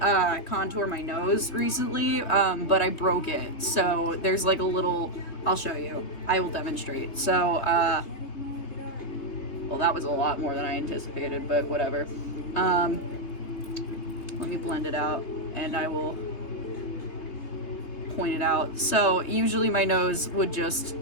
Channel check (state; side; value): late; right; 3.3 ms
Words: contour my nose recently, but I broke it. So there's like a little, I'll show you. I will demonstrate. So, well, that was a lot more than I anticipated, but whatever. Let me blend it out and I will point it out. So usually my nose would just